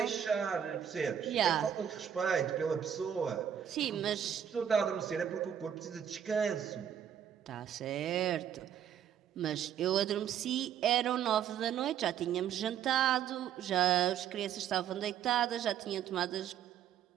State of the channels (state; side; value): quieter; left; 9.1 dB